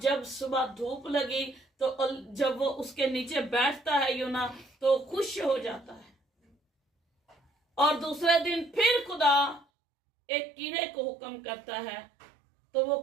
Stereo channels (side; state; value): left; drops out; at 9.7 s